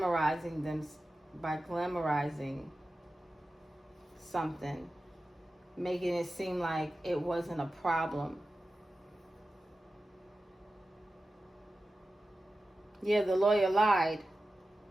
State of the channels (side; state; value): both; normal; correlation 0.94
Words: something, making it seem like it wasn't a problem. Yeah, the lawyer lied.